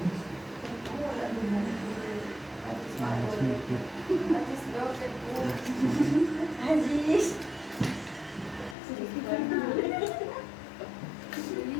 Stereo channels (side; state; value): right; drops out; at 8.8 s